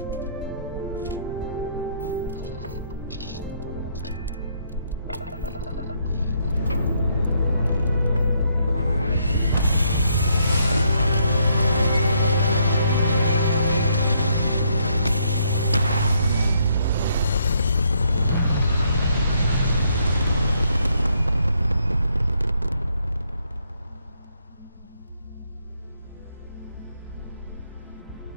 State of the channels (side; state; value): both; inverted; correlation -0.72